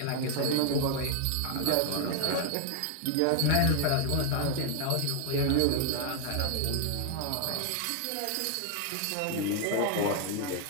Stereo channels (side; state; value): both; different; correlation 0.00